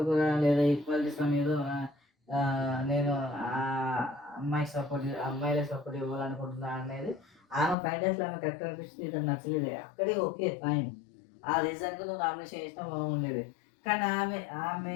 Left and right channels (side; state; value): right; drops out; at 7.8 s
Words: లేదా ఈక్వాలిటీస్ మీద నేను అమ్మాయిలకు సపోర్ట్ ఇవ్వాలనుకుంటున్నా అనేది ఆమె ఫైనల్స్లో ఆమె కరెక్ట్ అనిపిస్తుంది. ఇది నచ్చలేదు. అక్కడే ఓకే ఫైన్, ఆ రీజన్కి నువ్వు నామినేషన్ చేసినా బాగుండేది. కానీ